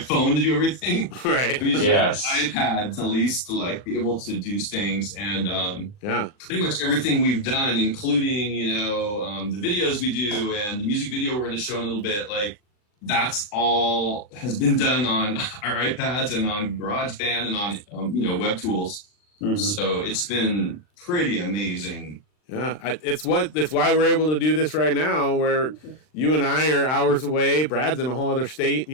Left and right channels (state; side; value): late; right; 39 ms